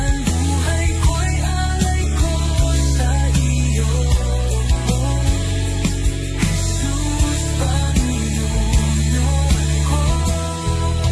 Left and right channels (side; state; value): both; identical; correlation 1.00